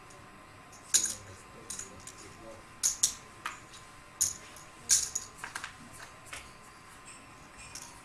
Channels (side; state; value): both; identical; correlation 1.00